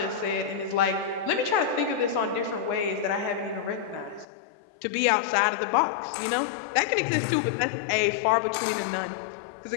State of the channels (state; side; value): drops out; right; at 4.2 s